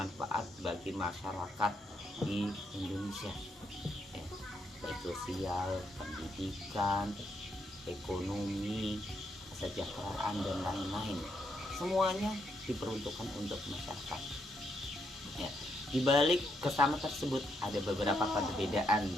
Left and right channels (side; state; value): both; normal; correlation 0.77